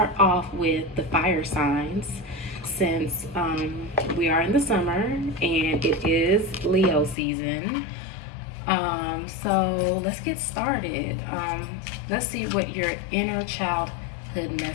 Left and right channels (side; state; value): right; drops out; at 7.2 s